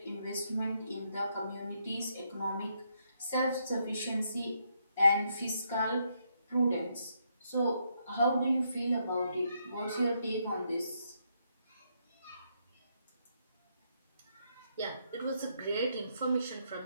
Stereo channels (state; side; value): inverted; both; correlation -0.77